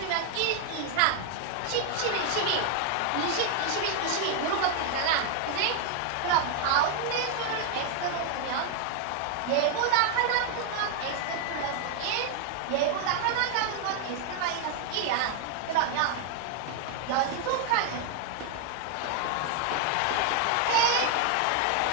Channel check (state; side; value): different; both; correlation 0.00